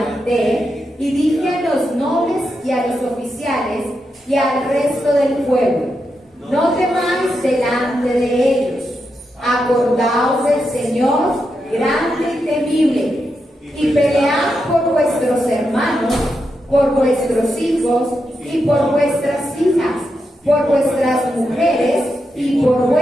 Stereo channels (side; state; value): both; normal; correlation 0.85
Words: y dije a los nobles y a los oficiales y al resto del pueblo: no temáis delante de ellos. Acordaos del Señor, grande y temible, y pelead por vuestros hermanos, por vuestros hijos y por vuestras hijas, por vuestras mujeres y por